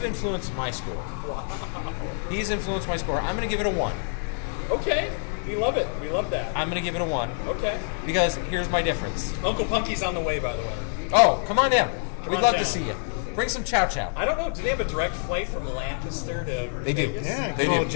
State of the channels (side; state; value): right; silent; 61 dB below the other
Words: influenced my score. He's influenced my score. I'm going to give it a 1. Okay. We love it. We love that. I'm going to give it a 1 Okay. because here's my difference. Uncle Punky's on the way, by the way. Oh, come on down. Come We'd on love down. to see you. Bring some chow chow. I don't know. Do they have a direct flight from Lancaster to They do. Vegas? Yeah, They call do.